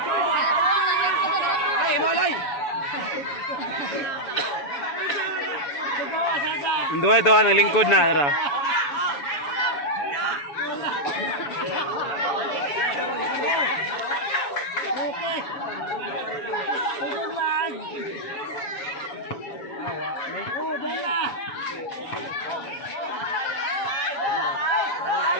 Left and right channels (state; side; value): late; right; 7.0 ms